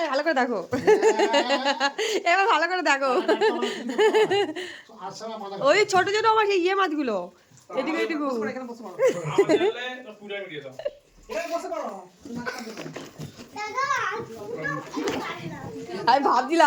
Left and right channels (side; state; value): both; identical; correlation 1.00